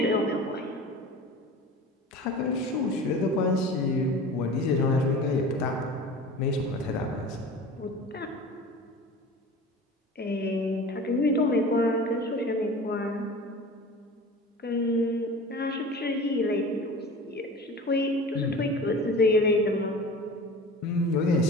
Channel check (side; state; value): both; normal; correlation 0.37